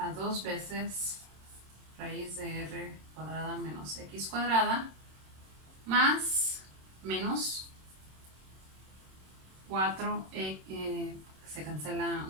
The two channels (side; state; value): left; late; 27 ms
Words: 2 veces raíz de r cuadrada menos x cuadrada más menos 4, se cancela